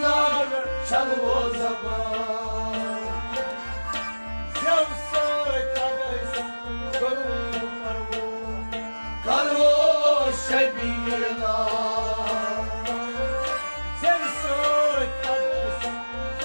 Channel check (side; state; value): both; inverted; correlation -1.00